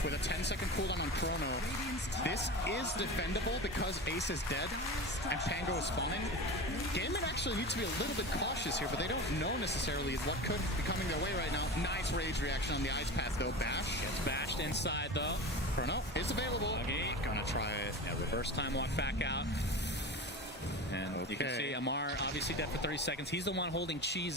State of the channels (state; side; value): normal; both; correlation 0.29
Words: with a 10-second cooldown on Chrono. This is defendable because Ace is dead and Pango is spawning. Gaiman actually needs to be a little bit cautious here, but they don't know necessarily what could be coming their way right now. Nice rage reaction on the ice path, though. Bash. Gets bashed inside, though. Chrono is available. Okay. Gonna try it. Yeah, reverse time walk back out. And you can see Amar obviously dead for 30 seconds. He's the one holding cheese